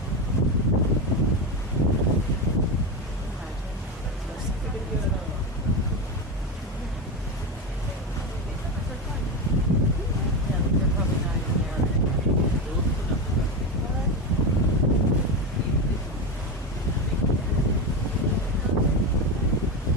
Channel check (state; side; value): normal; both; correlation 0.16